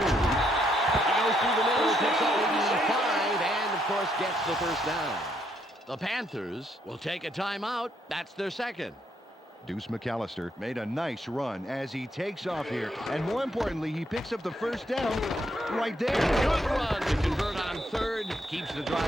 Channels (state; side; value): normal; both; correlation 0.74